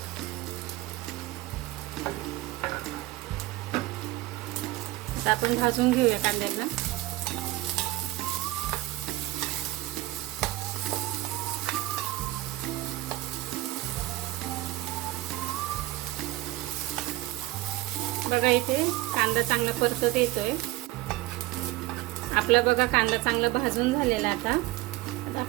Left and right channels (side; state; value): left; quieter; 17.9 dB